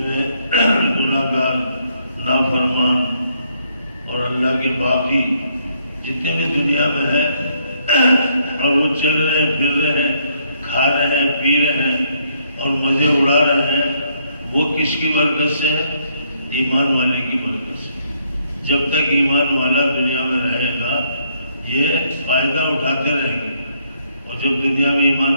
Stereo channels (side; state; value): both; inverted; correlation -0.70